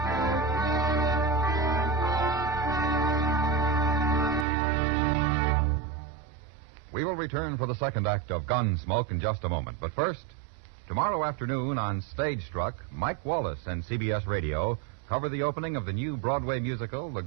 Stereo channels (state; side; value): drops out; left; at 4.5 s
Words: We will return for the second act of Gunsmoke in just a moment. But first, tomorrow afternoon on Stage Struck, Mike Wallace and CBS Radio cover the opening of the new Broadway musical, The